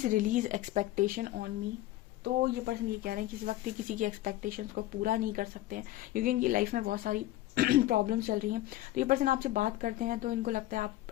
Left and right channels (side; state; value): right; quieter; 15.7 dB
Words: release expectation on me. तो ये पर्सन ये कह रहे हैं कि इस वक्त ये किसी की एक्सपेक्टेशंस को पूरा नहीं कर सकते हैं, क्योंकि इनकी लाइफ में बहुत सारी प्रॉब्लम्स चल रही हैं। तो ये पर्सन आपसे बात करते हैं तो इनको लगता है